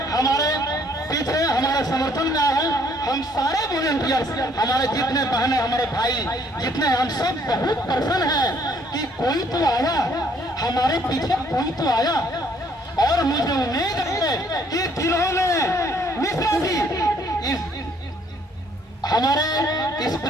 हमारे पीछे हमारे समर्थन में आए हैं। हम सारे वॉलंटियर्स, हमारे जितने बहनें, हमारे भाई जितने, हम सब बहुत प्रसन्न हैं कि कोई तो आया, हमारे पीछे कोई तो आया। और मुझे उम्मीद है कि जिन्होंने मिश्रा जी हमारे इस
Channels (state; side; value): normal; both; correlation 0.64